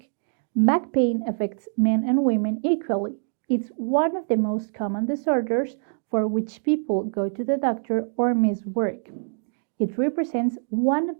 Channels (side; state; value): left; silent; digital silence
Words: Back pain affects men and women equally. It's one of the most common disorders for which people go to the doctor or miss work. It represents one